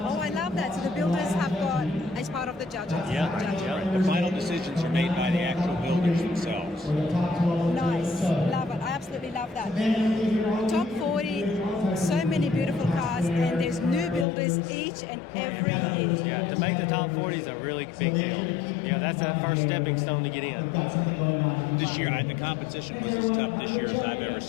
Oh, I love that. So the builders have got, as part of the judges. Yeah. Judging. Yeah. The final decisions are made by the actual builders themselves. Nice. Love it. I absolutely love that. Top 40, so many beautiful cars, and there's new builders each and every year. Yeah, to make the top 40 is a really big deal. Yeah, that's that first stepping stone to get in. This year, the competition was as tough this year as I've ever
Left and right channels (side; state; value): right; drops out; at 14.2 s